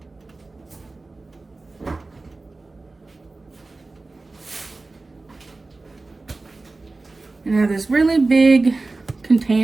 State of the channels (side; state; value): left; quieter; 3.4 dB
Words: And I have this really big